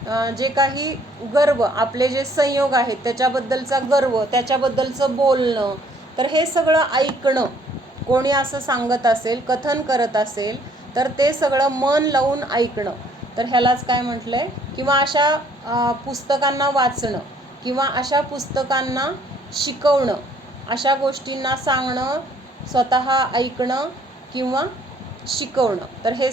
जे काही गर्व, आपले जे संयोग आहेत त्याच्याबद्दलचा गर्व, त्याच्याबद्दलचं बोलणं, तर हे सगळं ऐकणं. कोणी असं सांगत असेल, कथन करत असेल, तर ते सगळं मन लावून ऐकणं. तर ह्यालाच काय म्हटलं आहे, किंवा अशा पुस्तकांना वाचणं, किंवा अशा पुस्तकांना शिकवणं, अशा गोष्टींना सांगणं, स्वतः ऐकणं किंवा शिकवणं. तर हे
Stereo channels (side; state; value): both; normal; correlation 0.62